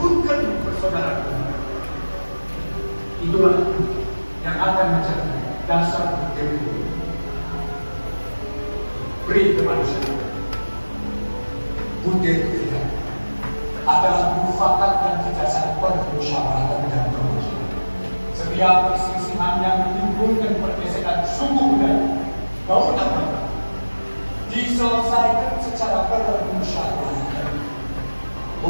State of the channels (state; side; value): inverted; both; correlation -1.00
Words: persaudaraan. Itulah yang akan menjadi dasar demokrasi. Beri kemanusiaan. Butir ketiga adalah mufakat yang didasarkan pada musyawarah dan permusuhan. Setiap perselisihan yang menimbulkan pergesekan suku budaya maupun agama diselesaikan secara bermusyawarah.